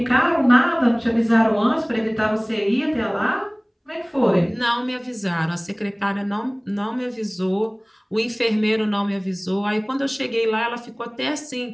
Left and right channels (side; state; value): both; identical; correlation 1.00